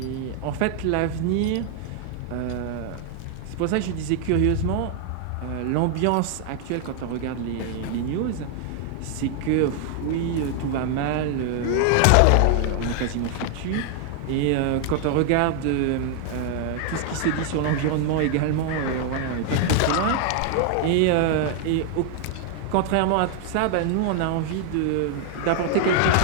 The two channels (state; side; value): different; both; correlation 0.00